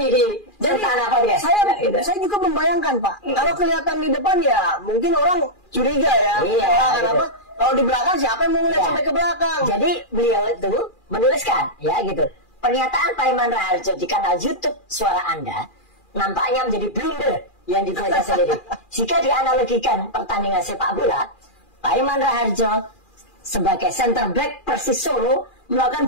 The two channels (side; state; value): right; late; 2.4 ms